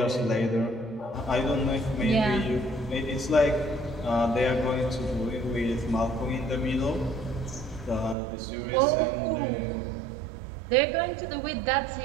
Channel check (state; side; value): drops out; left; at 8.2 s